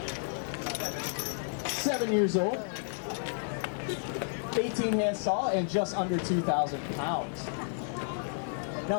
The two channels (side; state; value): right; silent; digital silence